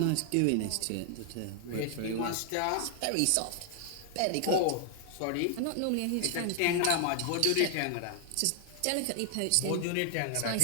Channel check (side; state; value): both; different; correlation 0.00